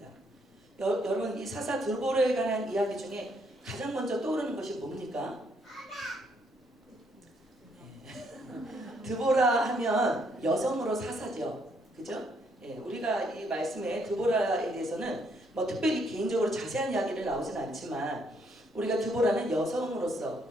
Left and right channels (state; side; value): normal; both; correlation 0.71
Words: 여러분, 이 사사 드보라에 관한 이야기 중에 가장 먼저 떠오르는 것이 뭡니까? 드보라 하면 여성으로 사사죠, 그죠? 예, 우리가 이 말씀에 드보라에 대해서는 뭐 특별히 개인적으로 자세한 이야기를 나오진 않지만 우리가 드보라는